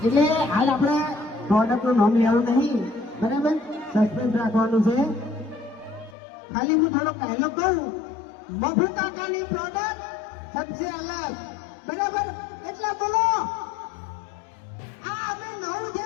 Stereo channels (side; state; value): right; drops out; at 6.2 s